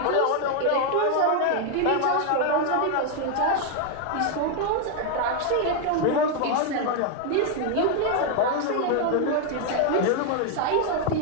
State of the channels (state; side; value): different; both; correlation 0.01